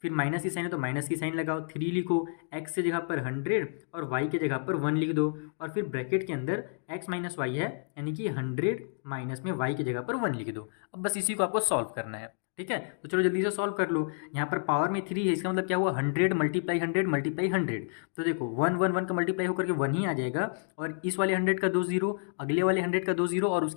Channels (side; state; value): right; silent; digital silence